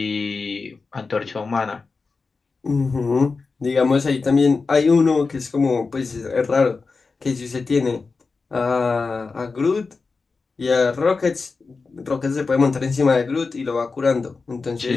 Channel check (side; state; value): right; quieter; 4.3 dB